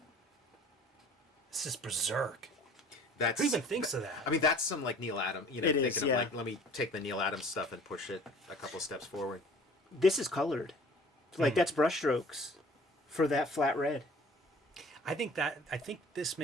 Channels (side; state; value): both; normal; correlation 0.49